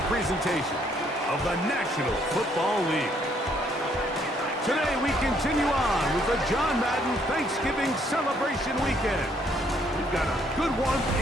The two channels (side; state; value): both; normal; correlation 0.68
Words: presentation of the National Football League. Today we continue on with the John Madden Thanksgiving Celebration Weekend. We've got a good one